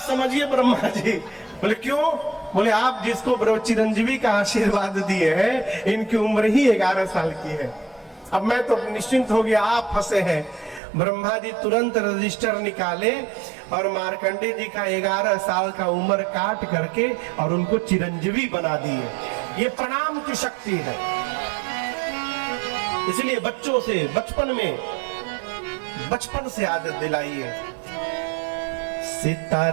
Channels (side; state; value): left; drops out; at 10.8 s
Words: समझिए ब्रह्मा जी बोले क्यों? बोले आप जिसको चिरंजीवी का आशीर्वाद दिए हैं इनकी उम्र ही 11 साल की है। अब मैं तो निश्चिंत हो गया, आप फंसे हैं। ब्रह्मा जी तुरंत रजिस्टर निकाले और मार्कंडेय जी का 11 साल का उम्र काट करके और उनको चिरंजीवी बना दिए। ये प्रणाम की शक्ति है। इसलिए बच्चों से बचपन से आदत दिलाइए।